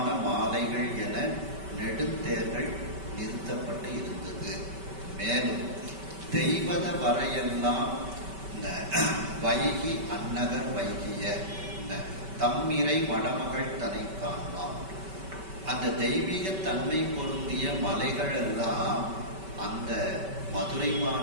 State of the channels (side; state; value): left; late; 5.2 ms